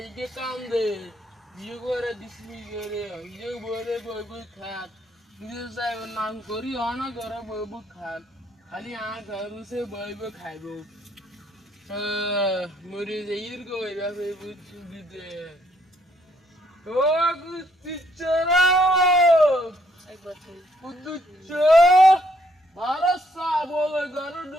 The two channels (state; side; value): normal; both; correlation 0.70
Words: কাম দে বিয়ে করে দিসলি করে ইয়ে বরে বই বই খাত নিজে যাই নাম করি অনা করে বই বই খাত খালি আ ঘর সে বই বই খাইব মরে যাইর গো এরা বই বই সুবিধে ও গুচ্চিচরা একবার বুদ্ধুচ্চ ভারত সা বলে ঘর